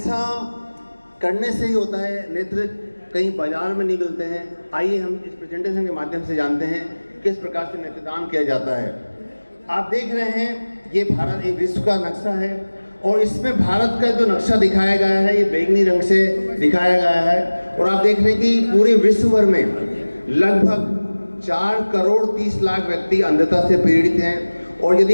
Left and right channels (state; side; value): inverted; both; correlation -1.00